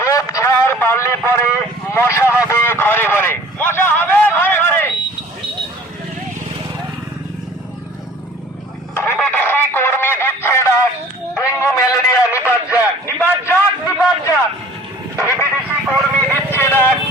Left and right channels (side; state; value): both; normal; correlation 0.49